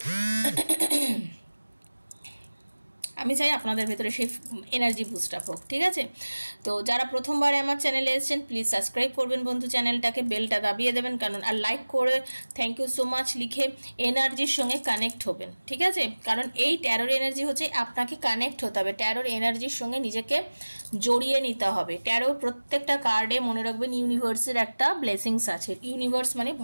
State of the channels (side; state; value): both; inverted; correlation -1.00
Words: আমি চাই আপনাদের ভেতরে সেই এনার্জি বুস্ট আপ হোক। ঠিক আছে, তো যারা প্রথমবার আমার চ্যানেলে এসেছেন, প্লিজ সাবস্ক্রাইব করবেন বন্ধু চ্যানেলটাকে, বেলটা দাবিয়ে দেবেন, কারণ আর লাইক করে থ্যাংক ইউ সো মাচ লিখে এনার্জির সঙ্গে কানেক্ট হবেন। ঠিক আছে, কারণ এই ট্যারোর এনার্জি হচ্ছে আপনাকে কানেক্ট হতে হবে, ট্যারোর এনার্জির সঙ্গে নিজেকে জড়িয়ে নিতে হবে। ট্যারো প্রত্যেকটা কার্ডে মনে রাখবেন ইউনিভার্সের একটা ব্লেসিংস আছে। ইউনিভার্স মানে